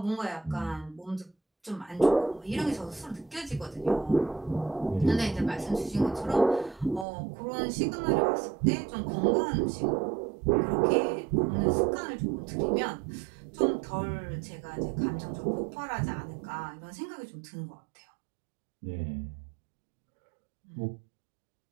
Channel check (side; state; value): left; drops out; at 7.1 s